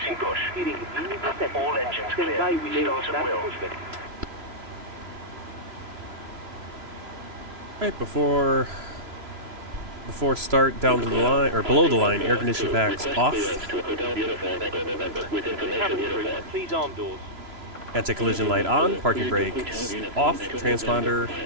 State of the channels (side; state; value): left; late; 3.0 ms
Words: push. Steering wheel is set. All engines Stand clear. by, we Start at start will. pushback. Right, before start, down to the line, or below the line, air conditioning packs off. Please arm doors. Anti-collision light on, parking brakes off, transponder,